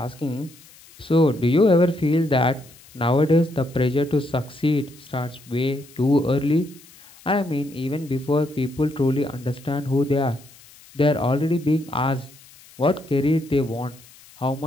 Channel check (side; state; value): left; noise; hiss, 24 dB below the sound